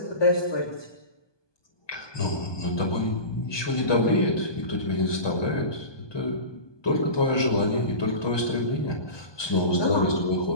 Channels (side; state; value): right; late; 1.2 ms